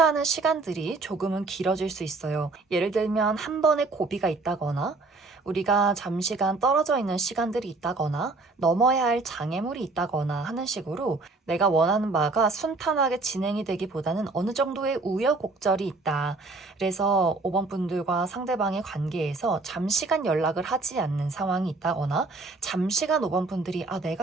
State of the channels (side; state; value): left; quieter; 3.5 dB